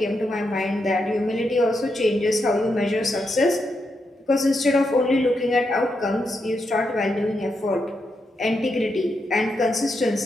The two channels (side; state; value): both; normal; correlation 0.83